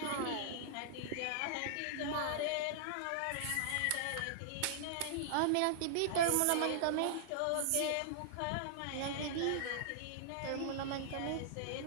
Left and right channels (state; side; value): different; both; correlation -0.01